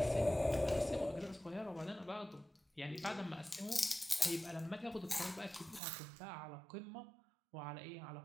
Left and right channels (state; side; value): drops out; left; at 5.8 s